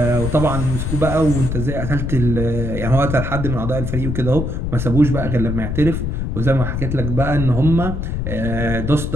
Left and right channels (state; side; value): noise; left; rumble, 3 dB below the sound